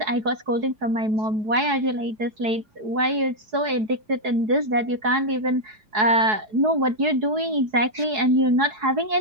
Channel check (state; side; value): late; left; 4.7 ms